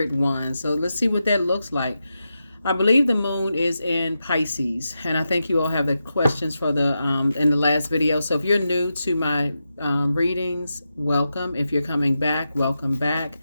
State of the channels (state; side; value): inverted; both; correlation -0.89